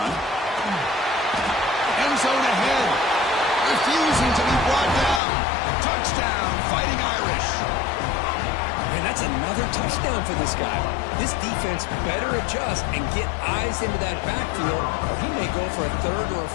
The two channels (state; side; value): drops out; right; at 5.2 s